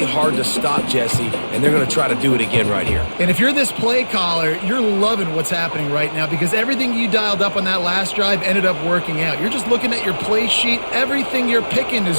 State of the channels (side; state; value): both; inverted; correlation -1.00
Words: hard to stop, Jesse, and they're going to try to do it again right here. And if you're this play caller, you're loving what's happening right now because everything you dialed up on that last drive ended up working out. You're just looking at your play sheet. Everything you're picking